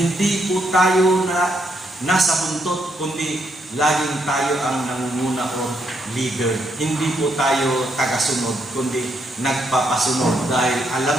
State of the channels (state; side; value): normal; both; correlation 0.76